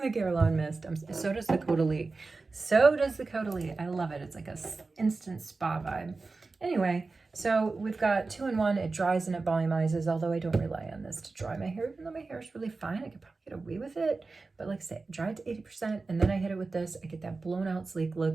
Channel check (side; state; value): left; quieter; 3.8 dB